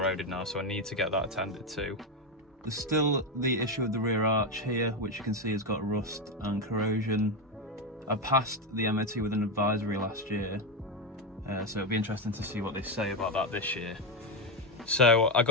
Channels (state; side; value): normal; both; correlation 0.09